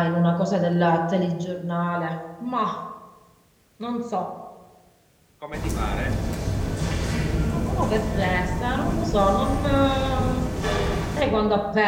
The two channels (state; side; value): identical; both; correlation 1.00